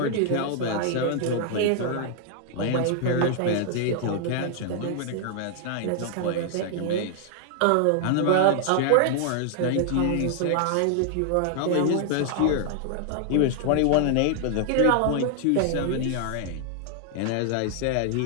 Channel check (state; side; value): different; both; correlation 0.00